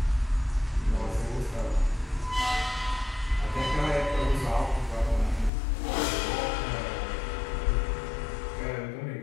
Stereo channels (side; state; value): right; drops out; at 5.5 s